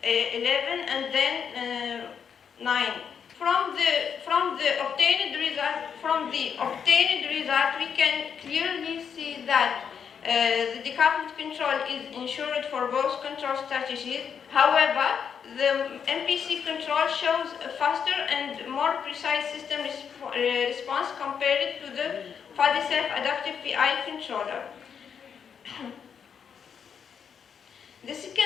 11, and then 9. From the obtained result, we can clearly see that the decoupled control is ensured for both control strategies. However, the MPC control shows a faster and more precise system response compared to the fuzzy self-adaptive PI controller. The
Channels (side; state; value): right; quieter; 7.2 dB